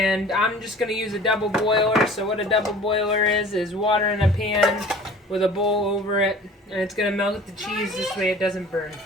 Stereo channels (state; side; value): normal; both; correlation 0.46